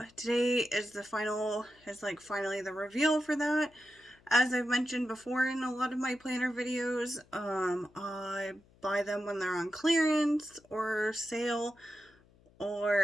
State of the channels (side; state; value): left; noise; hum, 29 dB below the sound